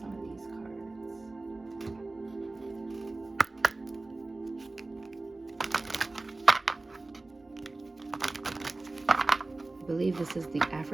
some of these cards. I believe this is the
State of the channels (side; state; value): left; quieter; 3.2 dB